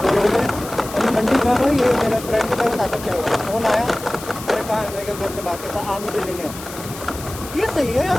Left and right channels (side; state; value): left; noise; hiss, 13 dB below the sound